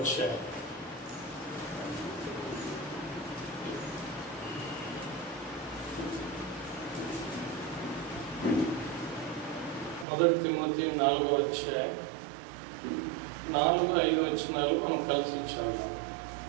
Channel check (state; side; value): drops out; left; at 10.1 s